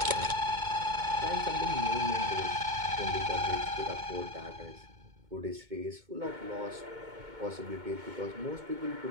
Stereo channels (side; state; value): left; late; 2.2 ms